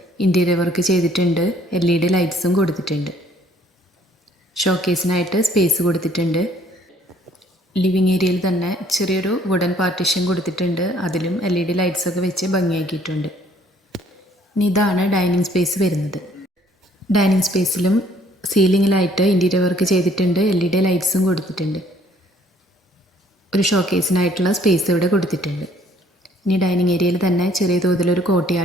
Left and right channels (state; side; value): normal; both; correlation 0.61